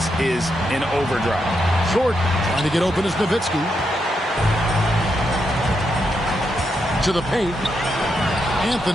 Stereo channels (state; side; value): normal; both; correlation 0.82